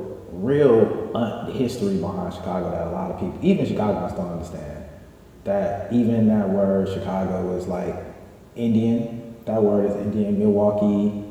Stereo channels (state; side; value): identical; both; correlation 1.00